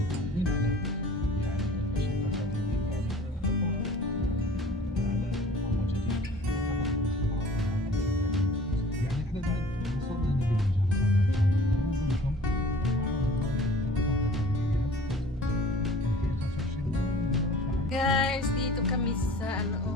Guys, dito kami sa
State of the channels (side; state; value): both; normal; correlation 0.47